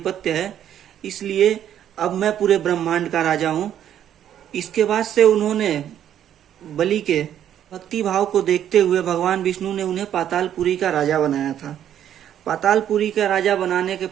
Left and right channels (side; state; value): left; quieter; 10.3 dB